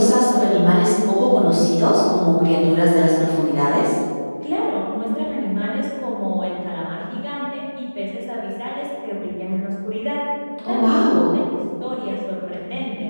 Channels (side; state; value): both; inverted; correlation -1.00